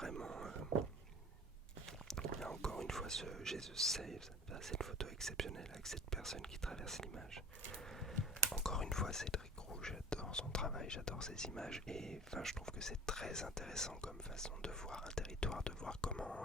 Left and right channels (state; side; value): normal; both; correlation 0.41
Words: là encore une fois, ce Jesus Saves, cette photo exceptionnelle avec cette personne qui traverse l'image. Encore une fois, Cédric Roux, j'adore son travail, j'adore ses images, et je trouve que c'est très intéressant comme façon de voir un territoire, de voir